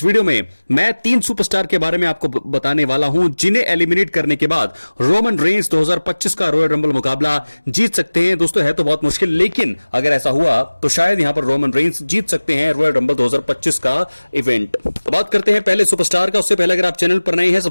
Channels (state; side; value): inverted; both; correlation -1.00